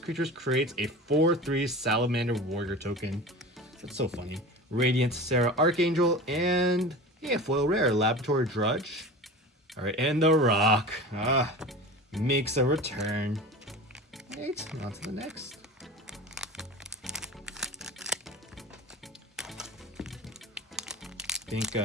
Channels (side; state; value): both; normal; correlation 0.33